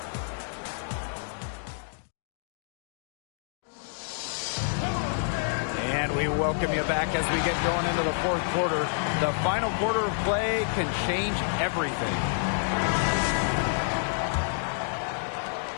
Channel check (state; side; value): silent; right; digital silence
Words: And we welcome you back as we get going into the 4th quarter. The final quarter of play can change everything.